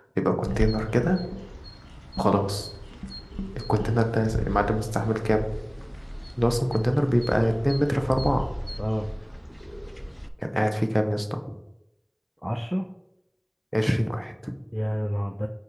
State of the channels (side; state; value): both; identical; correlation 1.00